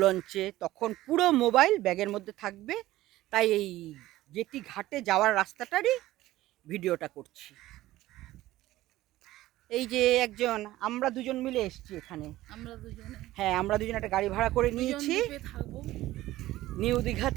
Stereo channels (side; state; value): left; quieter; 16.1 dB